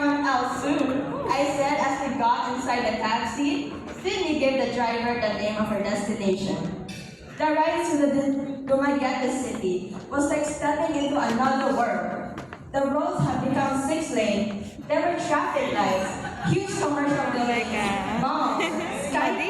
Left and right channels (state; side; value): identical; both; correlation 1.00